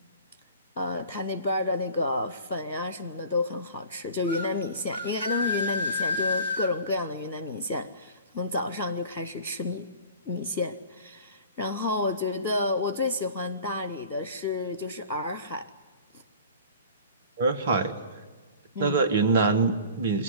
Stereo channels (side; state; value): both; inverted; correlation -0.43